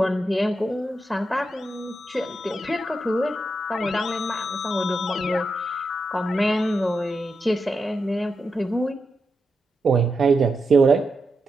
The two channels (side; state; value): both; normal; correlation 0.86